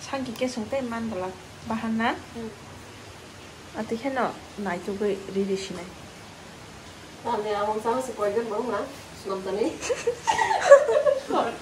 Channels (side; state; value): both; identical; correlation 1.00